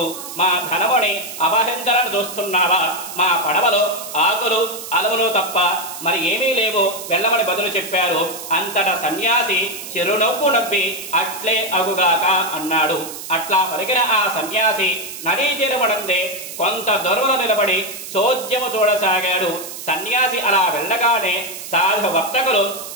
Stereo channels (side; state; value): right; noise; hiss, 10 dB below the sound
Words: మా ధనముని అపహరించాలని చూస్తున్నావా? మా పడవలో ఆకులు అలములు తప్ప మరి ఏమీ లేవు, వెళ్ళమని బదులు చెప్పారు. అంతటా సన్యాసి చిరునవ్వు నవ్వి అట్లే అగుగాక అన్నాడు. అట్లా పలికిన ఆ సన్యాసి నదీ తీరమునందే కొంత దూరంలో నిలబడి చోద్యము చూడసాగాడు. సన్యాసి అలా వెళ్ళగానే సాధు వర్తకులు